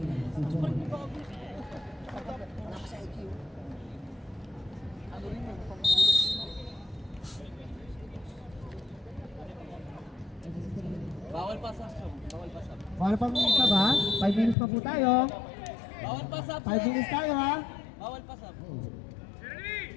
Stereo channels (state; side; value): drops out; right; at 14.6 s